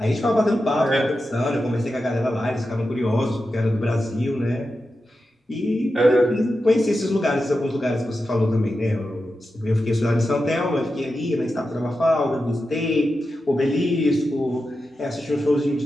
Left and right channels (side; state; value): both; normal; correlation 0.90